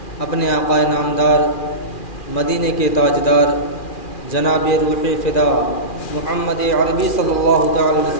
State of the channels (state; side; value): late; right; 2.4 ms